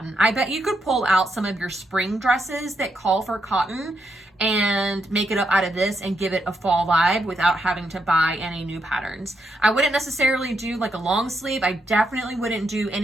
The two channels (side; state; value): both; normal; correlation 0.80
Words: I bet you could pull out some of your spring dresses that call for cotton and make it up out of this and give it a fall vibe without having to buy any new patterns. I wouldn't necessarily do like a long sleeve. I definitely wouldn't do